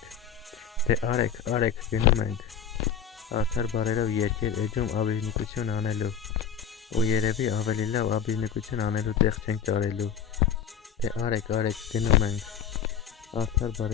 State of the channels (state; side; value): quieter; right; 7.8 dB